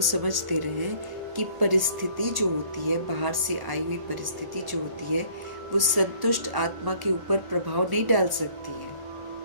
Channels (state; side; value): late; left; 1.1 ms